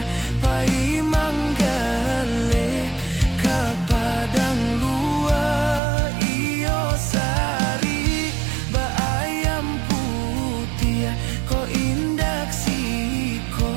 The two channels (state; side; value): drops out; left; at 5.8 s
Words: pai manggale ka padang luar iyo sari ba ayam putih ko indak